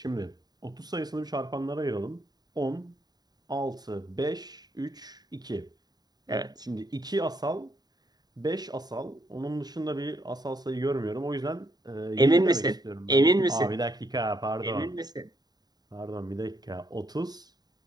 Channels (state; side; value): late; left; 0.20 ms